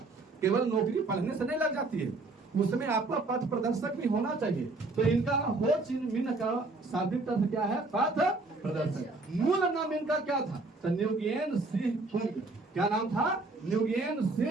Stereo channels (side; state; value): left; quieter; 3.3 dB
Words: केवल नौकरी पढ़ने से नहीं लग जाती है, उसमें आपका पथ प्रदर्शक भी होना चाहिए। तो इनका हो चिन मिन का शाब्दिक अर्थ क्या है, पथ प्रदर्शक। मूल नाम इनका क्या था, तो न्यूगेन सिंह कुंग। क्या नाम था, न्यूगेन